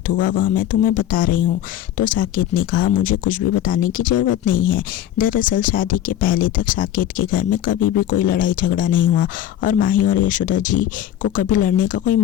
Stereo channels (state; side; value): quieter; right; 11.6 dB